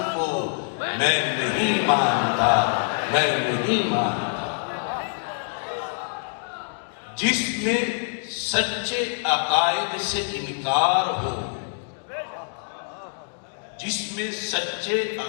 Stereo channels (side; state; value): right; silent; digital silence